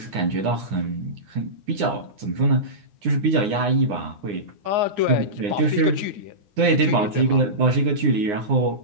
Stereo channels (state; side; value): late; left; 9.7 ms